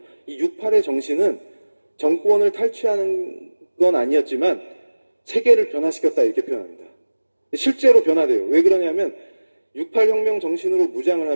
이 68의 정신은 정권을 탈취하는 건 아니었지만 세계를 변화시켰다 이렇게 표현합니다. 실제로 변화돼요. 왜 그러냐면 68혁명 정신으로 무장을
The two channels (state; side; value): inverted; both; correlation -1.00